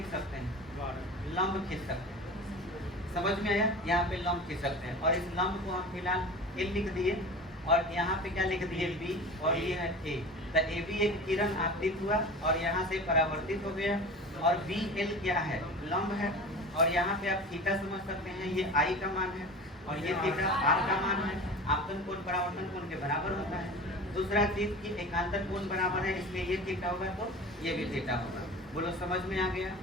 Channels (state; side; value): normal; both; correlation 0.35